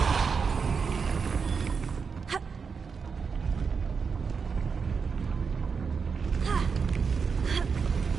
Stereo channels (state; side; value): quieter; left; 5.6 dB